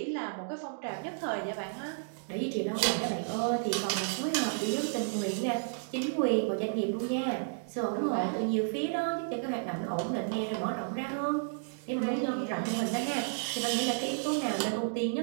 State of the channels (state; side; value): silent; left; digital silence